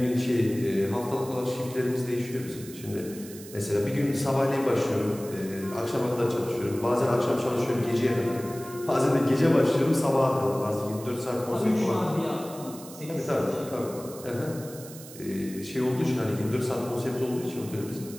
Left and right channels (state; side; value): noise; right; hiss, 16 dB below the sound